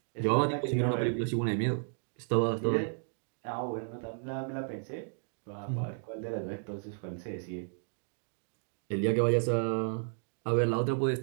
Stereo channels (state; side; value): silent; left; 56 dB below the other